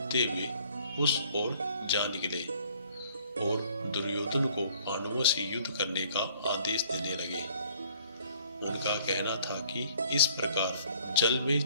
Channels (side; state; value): both; inverted; correlation -0.58